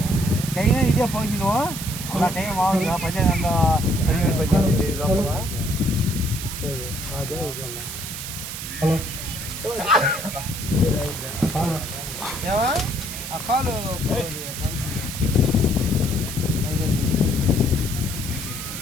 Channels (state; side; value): noise; right; hiss, 8 dB below the sound